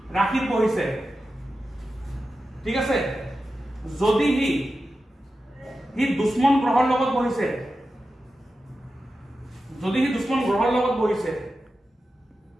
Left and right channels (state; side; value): normal; both; correlation 0.92